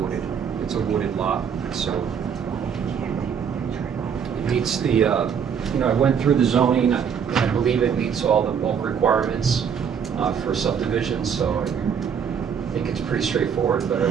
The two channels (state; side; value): quieter; left; 7.4 dB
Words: It's a wooded lot, so it meets the, I went through the zoning. I believe it meets all the bulk requirements for subdivision, so I think it's pretty straightforward, but